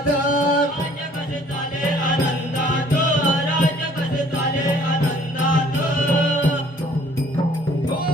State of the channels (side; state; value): both; normal; correlation 0.57